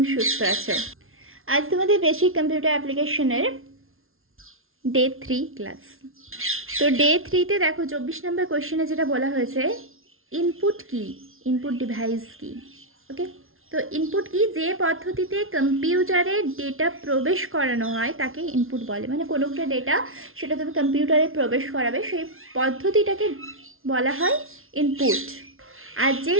সুস্থ আছো। আজ তোমাদের বেসিক কম্পিউটার অ্যাপ্লিকেশনের ডে 3 ক্লাস। তো ডে 3তে দেখো 24 নম্বর কোয়েশ্চেনে যেটা বলা হয়েছে, ইনপুট কি, ইনপুট ডিভাইস কি। ওকে, তো ইনপুট কি, যে পদ্ধতিতে কম্পিউটারে ডেটা প্রবেশ করানো হয় তাকে ইনপুট বলে। মানে কোনো একটা ডেটা সেটা তুমি কম্পিউটারে প্রবেশ করাবে, সেই পদ্ধতিটাকে বলা হয় ইনপুট। আর যে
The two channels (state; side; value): late; left; 0.61 ms